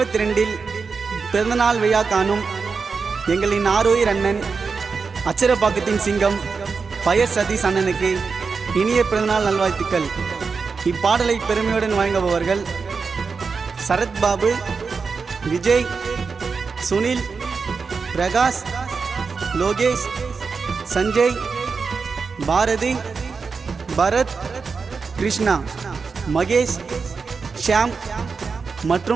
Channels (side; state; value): left; quieter; 5.0 dB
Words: பிறந்தநாள் விழா காணும் எங்களின் ஆரோயிர் அண்ணன் அச்சரப்பாக்கத்தின் சிங்கம் பயர் சதீஷ் அண்ணனுக்கு இனிய பிறந்தநாள் நல்வாழ்த்துக்கள். இப்பாடலை பெருமையுடன் வழங்குபவர்கள் சரத் பாபு, விஜய், சுனில், பிரகாஷ், லோகேஷ், சஞ்சய், பாரதி, பரத், கிருஷ்ணா, மகேஷ், ஷியாம்